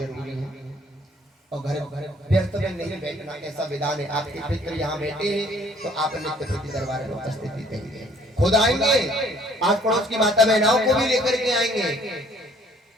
है। और घर व्यर्थ में नहीं बैठना, ऐसा विधान है। आपके पितृ यहाँ बैठे हैं तो आप नित्य प्रति दरबार में उपस्थिति देंगे। खुद आएंगे, आस पड़ोस की माता बहनाओं को भी लेकर के आएंगे।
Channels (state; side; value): normal; both; correlation 0.59